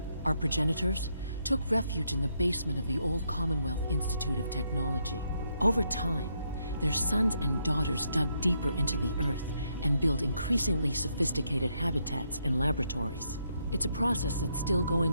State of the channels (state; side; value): inverted; both; correlation -0.77